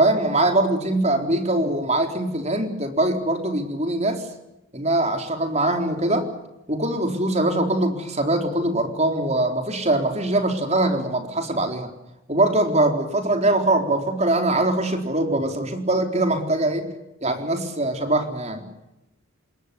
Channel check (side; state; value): both; normal; correlation 0.15